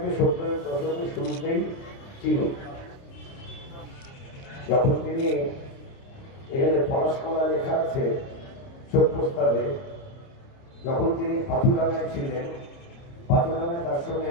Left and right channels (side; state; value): right; late; 30 ms